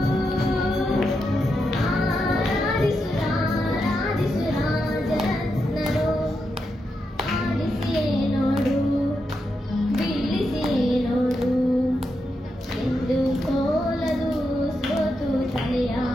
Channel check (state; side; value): normal; both; correlation 0.85